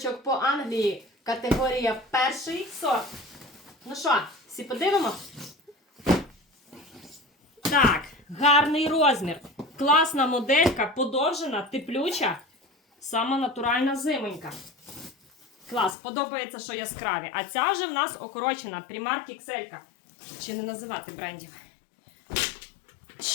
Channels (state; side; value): drops out; right; at 16.0 s